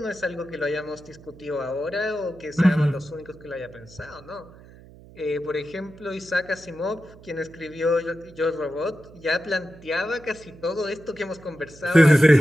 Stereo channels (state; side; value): noise; right; hum, 21 dB below the sound